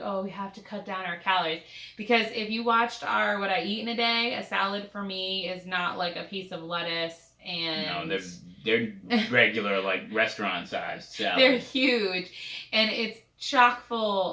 oh, we have to cut down our calories. Because if you watched our What I Eat in a Day, a salad for me is not like a piece of lettuce and... No, they're regular, like, restaurant-sized salads. They're huge. And it's chock full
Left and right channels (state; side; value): identical; both; correlation 1.00